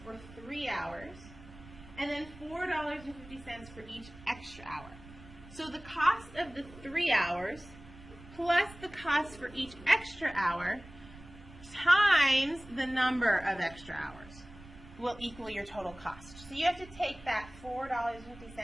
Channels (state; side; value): noise; right; rumble, 19 dB below the sound